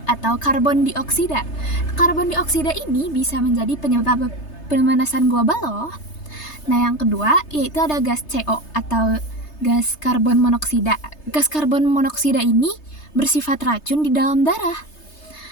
atau karbon dioksida. Karbon dioksida ini bisa menjadi penyebab pemanasan global loh. Nah, yang kedua yaitu ada gas CO atau gas karbon monoksida. Gas karbon monoksida ini bersifat racun di dalam darah.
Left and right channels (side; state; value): right; late; 3.3 ms